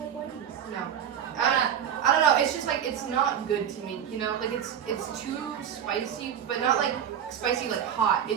whiteys? No. I don't know. It's just like it's not good to me. You know, like it's too spicy, but not like spicy like hot.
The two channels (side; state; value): left; quieter; 9.1 dB